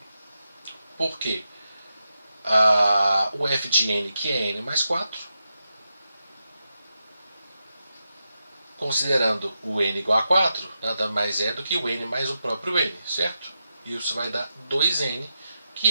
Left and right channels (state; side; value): inverted; both; correlation -0.87